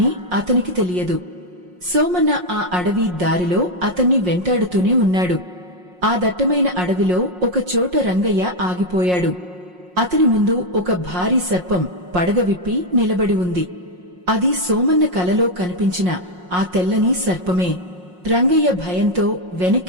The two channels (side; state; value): left; late; 5.6 ms